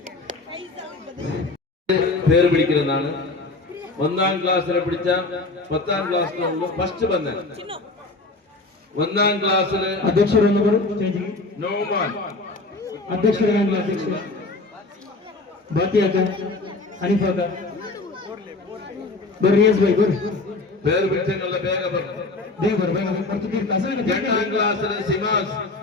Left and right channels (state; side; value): quieter; right; 3.3 dB